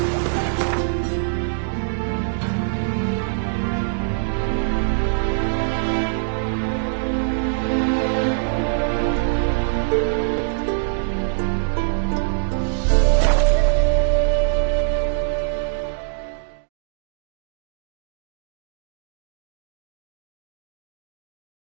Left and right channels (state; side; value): silent; left; digital silence